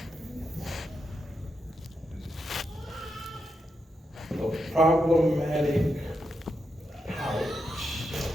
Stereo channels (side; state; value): both; normal; correlation 0.85